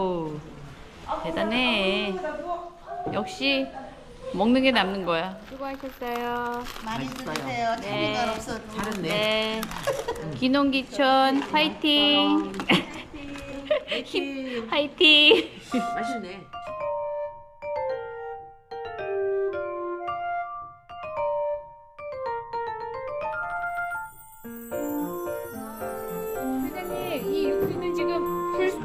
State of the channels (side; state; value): both; identical; correlation 1.00